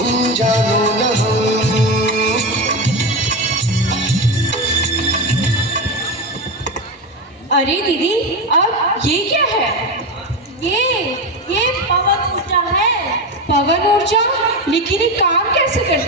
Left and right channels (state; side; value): normal; both; correlation 0.17